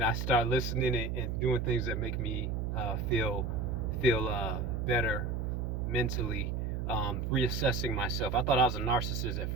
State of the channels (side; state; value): right; noise; hum, 2 dB below the sound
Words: I start listening and doing things that make me feel better mentally. Reassessing myself. I thought I was a narcissist at